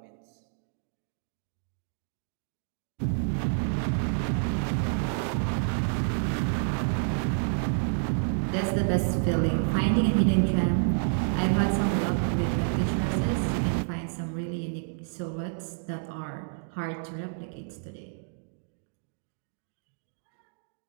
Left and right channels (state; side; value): silent; left; digital silence